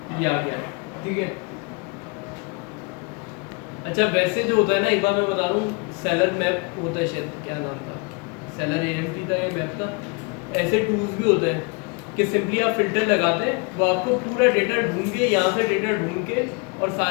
ये आ गया ठीक है। अच्छा वैसे जो होता है ना एक बार मैं बता रहा हूँ, सेलर मैप होता है शायद, क्या नाम था, सेलर AMP था या मैप था, ऐसे टूल्स भी होते हैं कि सिंपली आप फिल्टर लगाते हैं वो आपको पूरा डेटा ढूंढ के यहाँ से डेटा ढूंढ के और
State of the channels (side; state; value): right; quieter; 30.4 dB